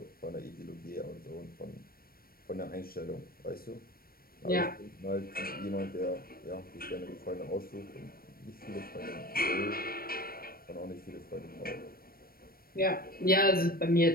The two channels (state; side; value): late; right; 0.43 ms